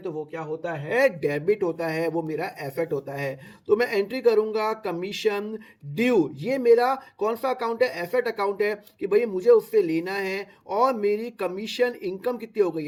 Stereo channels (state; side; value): identical; both; correlation 1.00